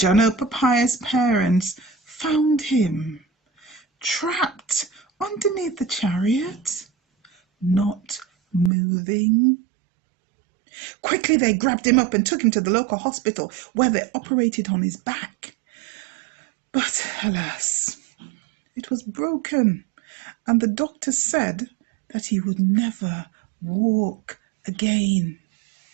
Papaya's parents found him trapped underneath the chariot, not moving. Quickly, they grabbed him up and took him to the local hospital, where they operated on his back. But alas, it was broken, and the doctor said that he would never walk again.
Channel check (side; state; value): left; drops out; at 8.7 s